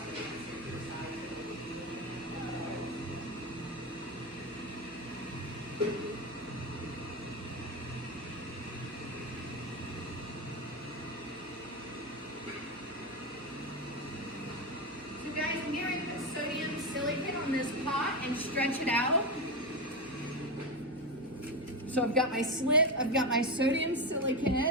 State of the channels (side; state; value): both; normal; correlation 0.14